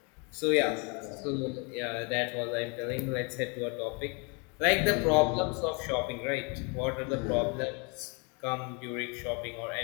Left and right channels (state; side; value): quieter; right; 33.4 dB